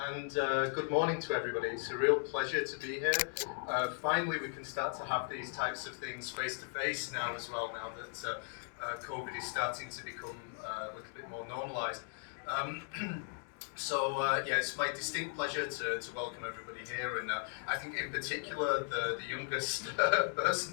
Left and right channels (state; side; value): silent; right; 53 dB below the other